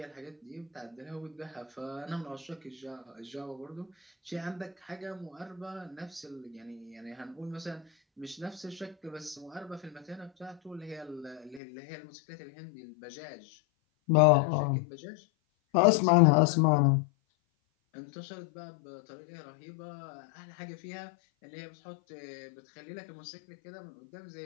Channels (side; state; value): right; drops out; at 11.6 s